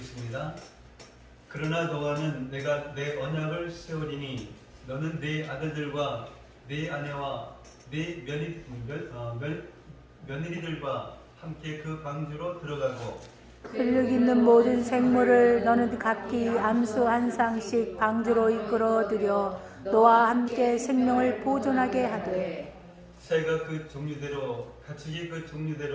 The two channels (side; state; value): both; identical; correlation 1.00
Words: 그러나 너와는 내가 내 언약을 세우리니 너는 네 아들들과 네 아내와 네 며느리들과 함께 그 방주로 들어가고 근력 있는 모든 생물을 너는 각기 암수 한 쌍씩 방주로 이끌어들여 너와 함께 생명을 보존하게 하되 새가 그 종류대로 가축이 그